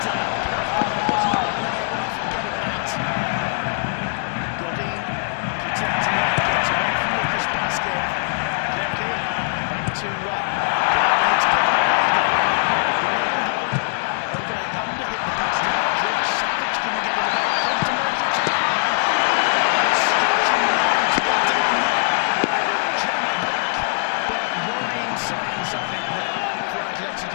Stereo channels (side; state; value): right; silent; 65 dB below the other